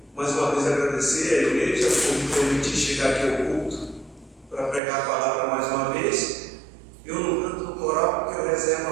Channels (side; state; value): left; drops out; at 4.8 s